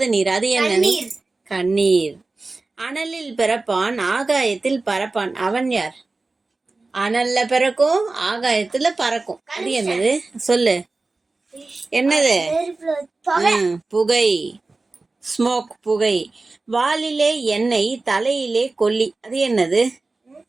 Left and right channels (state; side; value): quieter; left; 3.5 dB